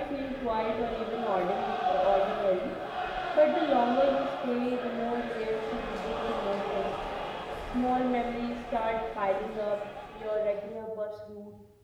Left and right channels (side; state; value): both; identical; correlation 1.00